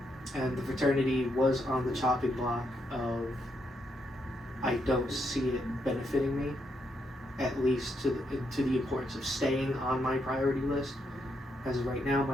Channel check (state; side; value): normal; both; correlation 0.79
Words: And the fraternity was on the chopping block of I don't see it benefiting me, at least to the importance of staying on my priority list. As of right now,